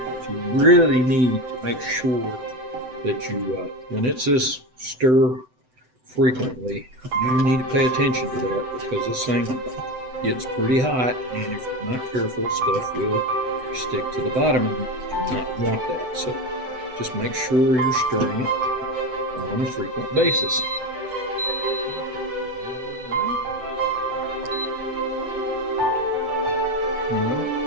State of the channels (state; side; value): late; left; 7.9 ms